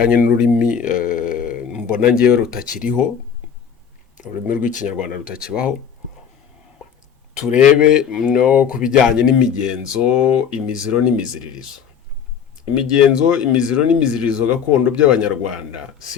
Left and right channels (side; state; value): right; quieter; 7.5 dB